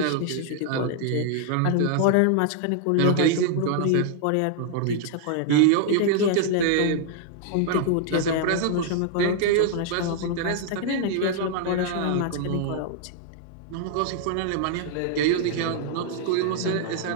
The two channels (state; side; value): different; both; correlation 0.00